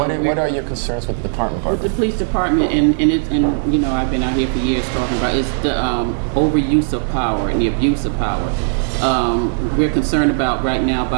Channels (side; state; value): left; silent; digital silence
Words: are your concerns with the department? With the police department, and you know, I've been out here for years talking about it's the overuse of power and the abuse of power. We're concerned about right now